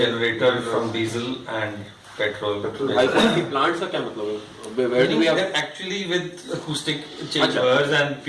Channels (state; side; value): identical; both; correlation 1.00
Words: from diesel and petrol. High quality plants का क्या मतलब है? Where do we have? They're actually with acoustic chambers and